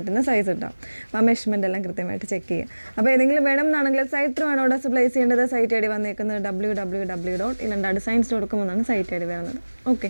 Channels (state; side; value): inverted; both; correlation -1.00